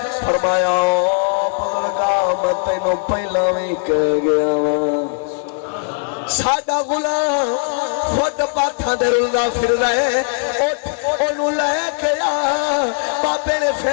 فرمایا او بزرگا میں تینوں پہلا بھی کہہ گیا سادہ غلام خود پاتھا دے رنگا پھر رہے انہوں لے کے آ بابے نے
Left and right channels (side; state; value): right; silent; digital silence